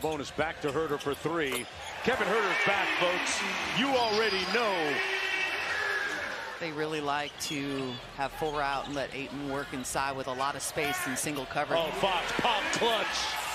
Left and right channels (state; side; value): identical; both; correlation 1.00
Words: back to Huerter for 3. Kevin Huerter's back, folks. You already know They really like to have full route and let Ayton work inside with a lot of space and single coverage. Oh, Fox pop clutch.